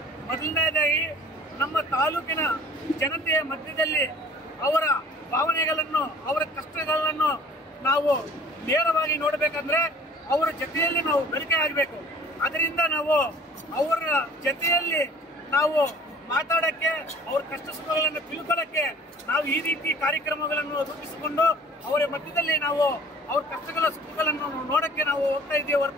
ಮೊದಲನೇದಾಗಿ ನಮ್ಮ ತಾಲೂಕಿನ ಜನತೆಯ ಮಧ್ಯದಲ್ಲಿ ಅವರ ಭಾವನೆಗಳನ್ನು, ಅವರ ಕಷ್ಟಗಳನ್ನು ನಾವು ನೇರವಾಗಿ ನೋಡಬೇಕಂದ್ರೆ ಅವರ ಜೊತೆಯಲ್ಲಿ ನಾವು ಬೆಳಕೆ ಆಗಬೇಕು. ಅದರಿಂದ ನಾವು ಅವರ ಜೊತೆಯಲ್ಲಿ ನಾವು ಮಾತಾಡಕ್ಕೆ, ಅವ್ರ ಕಷ್ಟ ಸುಖಗಳನ್ನು ತಿಳ್ಕೊಳ್ಳಕ್ಕೆ ನಾವು ಈ ರೀತಿ ಕಾರ್ಯಕ್ರಮಗಳನ್ನು ರೂಪಿಸಿಕೊಂಡು ಅವರ ಮಧ್ಯದಲ್ಲಿ ನಾವು ಅವ್ರ ಕಷ್ಟಗಳ ಸುಖಗಳನ್ನು ನೋಡಕ್ಕೆ ನಾವು ಹೋಗ್ತಾ ಇದ್ದೀವಿ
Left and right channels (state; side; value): normal; both; correlation 0.49